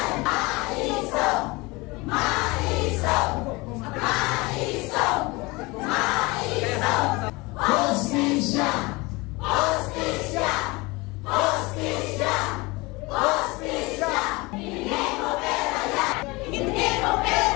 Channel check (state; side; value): quieter; right; 24.2 dB